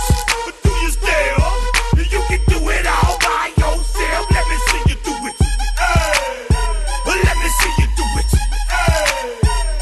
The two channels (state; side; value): identical; both; correlation 1.00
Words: but do you still? You can do it all by yourself. Let me see you do it. Let me see you do it.